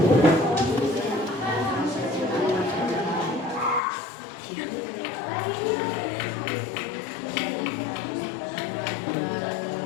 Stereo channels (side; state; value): right; drops out; at 3.8 s